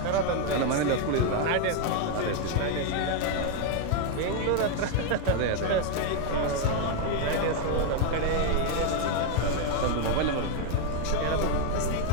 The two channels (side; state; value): both; different; correlation 0.00